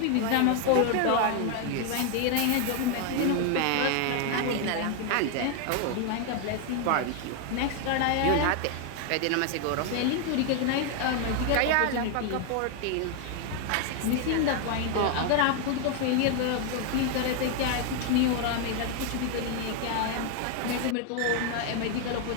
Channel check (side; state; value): both; different; correlation 0.01